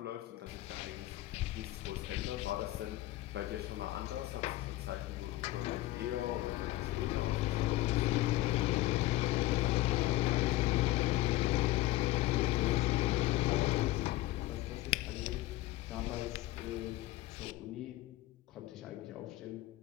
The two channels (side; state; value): right; quieter; 17.0 dB